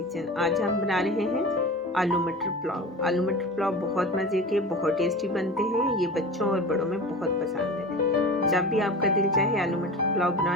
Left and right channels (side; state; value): both; normal; correlation 0.32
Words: आज हम बना रहे हैं आलू मटर पुलाव। आलू मटर पुलाव बहुत मज़े के, बहुत टेस्टी बनते हैं। ये बच्चों और बड़ों में बहुत पसंद है। जब भी आपका दिल चाहे आलू मटर पुलाव